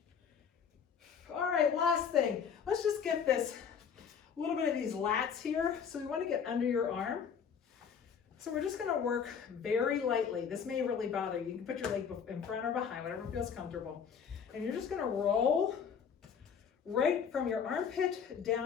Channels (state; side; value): quieter; right; 7.1 dB